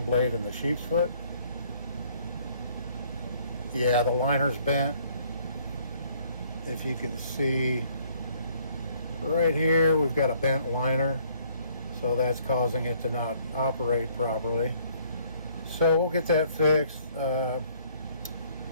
blade and the sheep's foot. Yeah, the liner's bent. If you can see right here, we've got a bent liner, so that's causing it to not operate properly. So we'll get that fixed.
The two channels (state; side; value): inverted; both; correlation -0.62